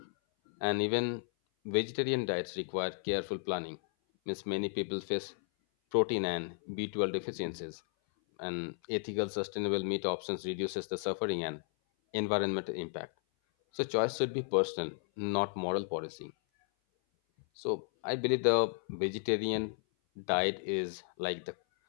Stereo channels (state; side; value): silent; right; 55 dB below the other